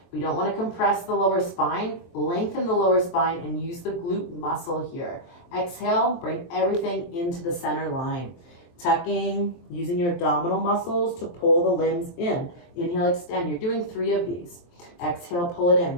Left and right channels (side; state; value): right; late; 23 ms